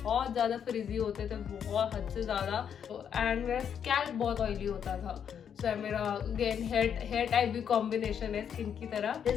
ज़्यादा फ्रिजी होते थे, बहुत हद से ज़्यादा, एंड मेरा स्कैल्प बहुत ऑयली होता था. सो मेरा अगेन हेयर टाइप भी कॉम्बिनेशन है स्किन की तरह.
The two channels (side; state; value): right; quieter; 8.1 dB